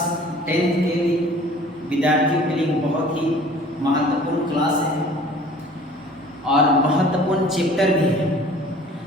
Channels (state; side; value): normal; both; correlation 0.49